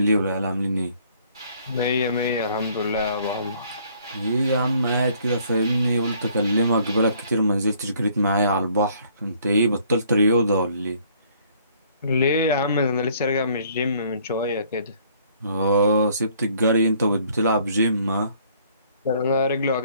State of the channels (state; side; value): inverted; both; correlation -0.61